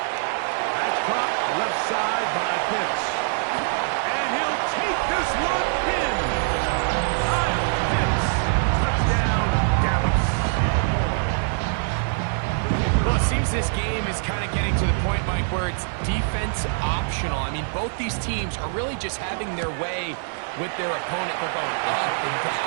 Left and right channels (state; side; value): silent; left; digital silence